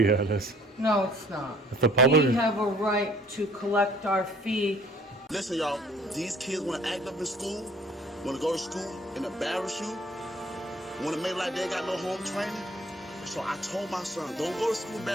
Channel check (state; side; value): normal; both; correlation 0.56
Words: it is. No, it's not. If the public We have a right to collect our fee. Listen, y'all, these kids want to act up in school, want to go to school and embarrass you, want to make like they got no home training. So I told my son, don't go to school